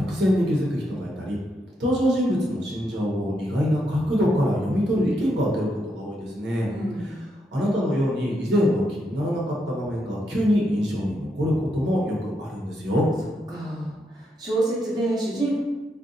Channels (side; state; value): both; normal; correlation 0.80